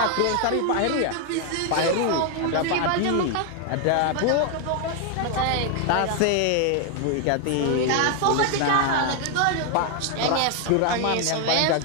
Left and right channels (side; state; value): both; different; correlation 0.01